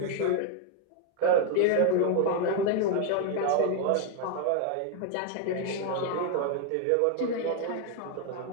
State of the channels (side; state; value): both; different; correlation 0.00